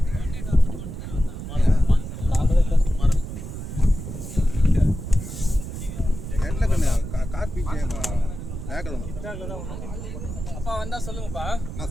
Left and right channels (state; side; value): noise; right; rumble, 8 dB below the sound